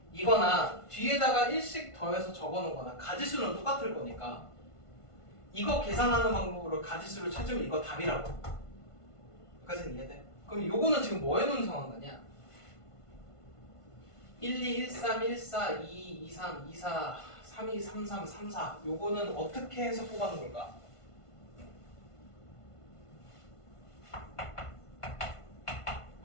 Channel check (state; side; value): late; right; 1.5 ms